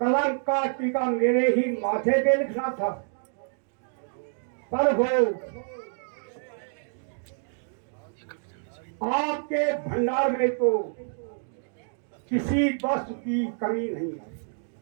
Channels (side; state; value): left; silent; digital silence